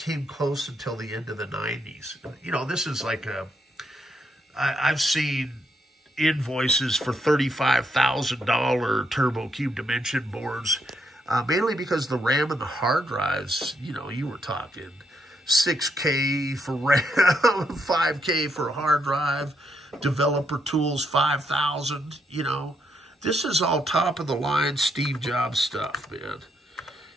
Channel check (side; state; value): both; normal; correlation 0.77